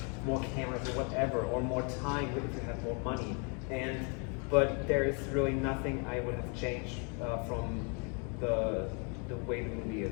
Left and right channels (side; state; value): right; quieter; 36.4 dB